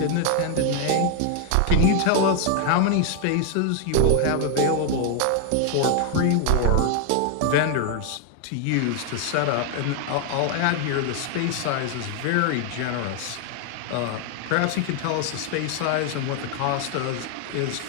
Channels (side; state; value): both; different; correlation 0.00